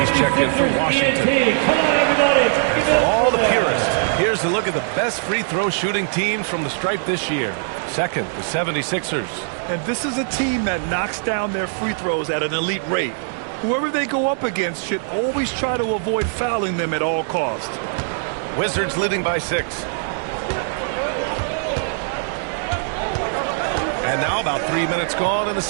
checked in for Washington. Come on, everybody. And for all the purists, here's a look at the best free throw shooting teams from the stripe this year. Second, the 76ers. And this is a team that knocks down their free throws at an elite rate. Whoever they go up against should always try to avoid fouling them at all costs. Wizards leading by 6. And now about 3 minutes gone in the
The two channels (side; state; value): left; silent; digital silence